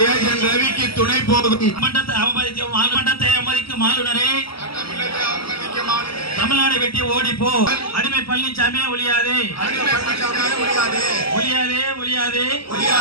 ரவிக்கு துணை போகும் மண்டத்தை அவமதிக்கும் ஆளுநரே, தமிழ்நாடு வெட்டி ஓடிப்போ. அடிமை பழனிசாமி ஒழியாதே, ஒழியாதே, ஒழியாதே.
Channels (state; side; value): late; right; 0.75 ms